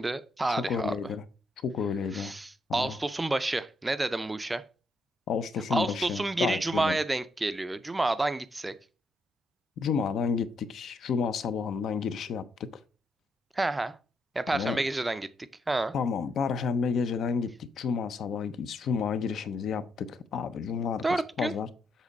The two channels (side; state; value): both; normal; correlation 0.78